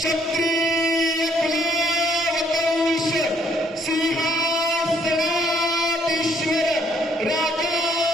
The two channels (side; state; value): both; normal; correlation 0.66